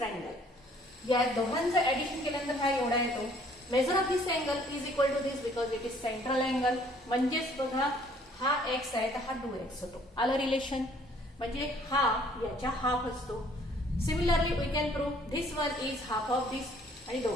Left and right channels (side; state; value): both; normal; correlation 0.60